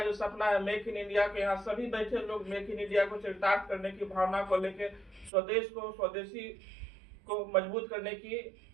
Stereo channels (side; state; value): left; drops out; at 5.3 s